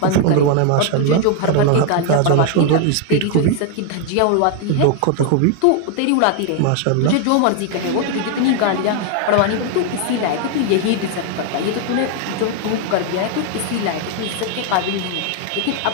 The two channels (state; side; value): different; both; correlation 0.00